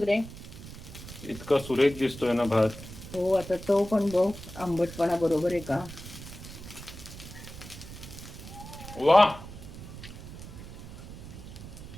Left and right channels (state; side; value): noise; right; rumble, 13 dB below the sound